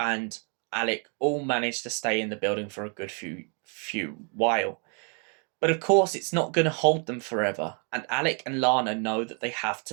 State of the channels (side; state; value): left; quieter; 39.0 dB